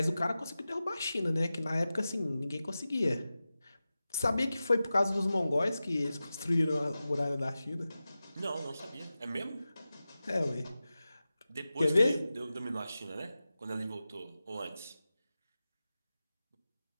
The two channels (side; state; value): both; inverted; correlation -0.95